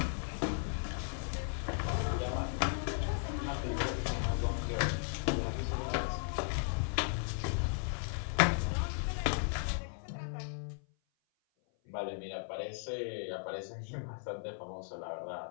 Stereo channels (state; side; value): silent; right; 53 dB below the other